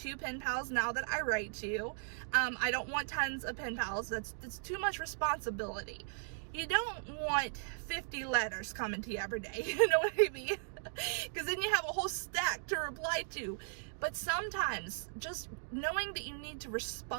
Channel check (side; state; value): left; silent; digital silence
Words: pen pals now that I write to. I don't want tons of pen pals. That's too much responsibility. You don't want 50 letters coming to you every day, you know what I mean? Because then you have a whole stack to reply to. But sometimes just knowing that you need to